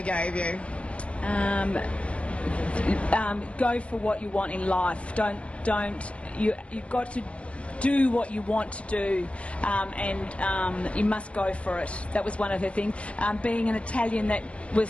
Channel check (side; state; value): right; late; 0.061 ms